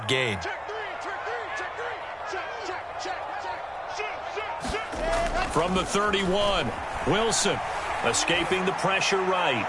gain. From the 31, Wilson escaping the pressure right.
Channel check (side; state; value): both; identical; correlation 1.00